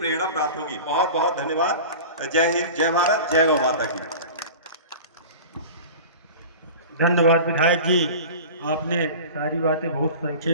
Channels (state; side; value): inverted; both; correlation -0.36